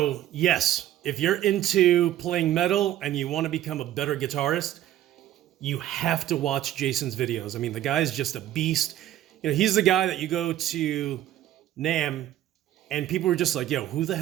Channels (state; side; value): quieter; left; 12.7 dB